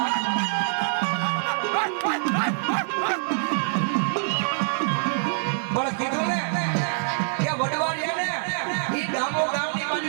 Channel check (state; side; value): silent; left; 62 dB below the other